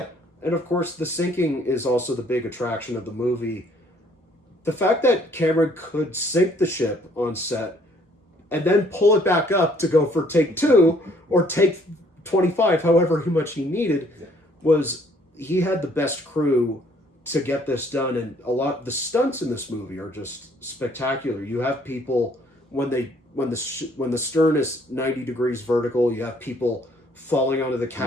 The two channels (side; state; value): both; normal; correlation 0.62